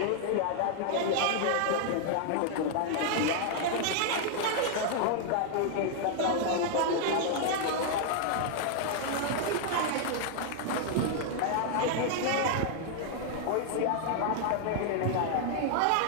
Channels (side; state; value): both; different; correlation 0.00